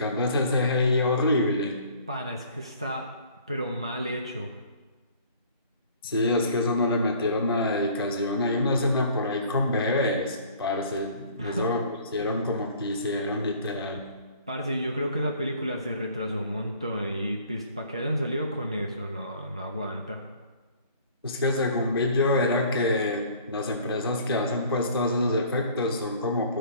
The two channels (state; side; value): inverted; both; correlation -0.52